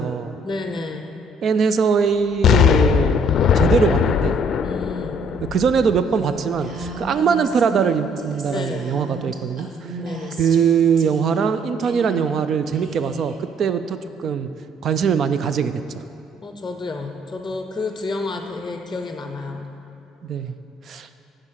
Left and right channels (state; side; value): normal; both; correlation 0.62